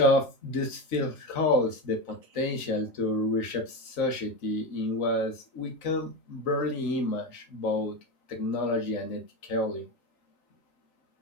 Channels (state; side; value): late; right; 3.9 ms